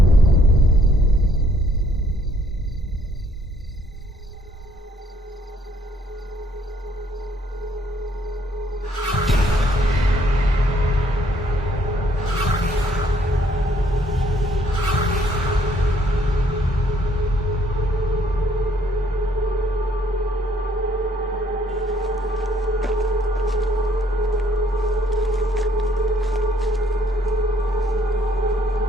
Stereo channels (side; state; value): both; normal; correlation 0.65